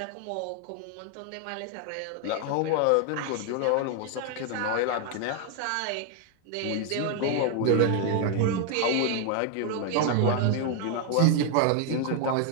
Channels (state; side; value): different; both; correlation 0.00